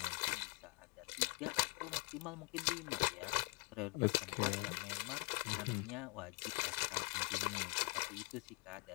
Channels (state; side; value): quieter; right; 30.2 dB